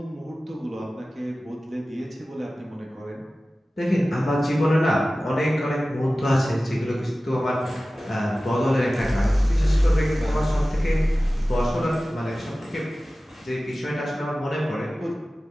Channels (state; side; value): normal; both; correlation 0.96